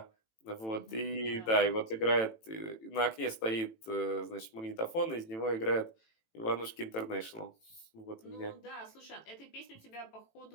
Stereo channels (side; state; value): right; late; 18 ms